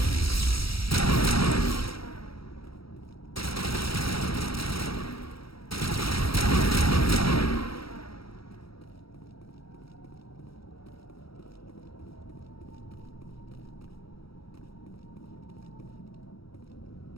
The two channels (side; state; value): right; late; 0.75 ms